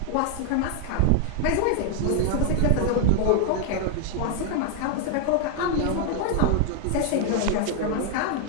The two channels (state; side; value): different; both; correlation 0.00